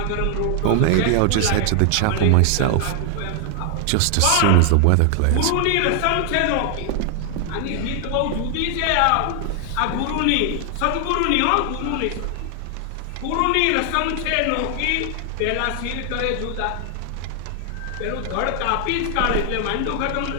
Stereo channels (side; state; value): both; different; correlation 0.00